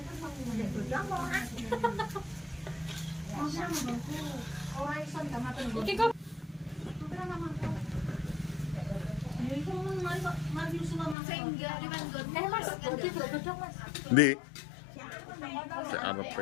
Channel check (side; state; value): right; drops out; at 11.2 s